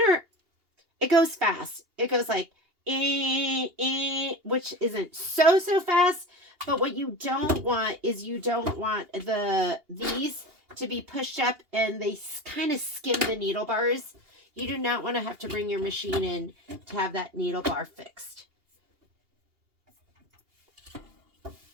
it goes fast. It goes like, which isn't so fast, but what you don't want is you don't want these to be pushed up and they kind of skim the needle bars. You do not want to have to bring your machine in to have that needle bar fixed.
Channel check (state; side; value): late; left; 2.8 ms